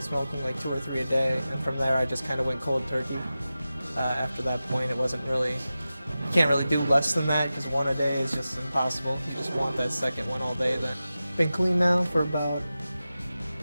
smoking like 2 or 3 a day, and from there I just kind of went cold turkey. After that point, you can't really do less than that because one a day is just impossible. You just want that second one all day then. Been clean now for about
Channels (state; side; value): inverted; both; correlation -0.94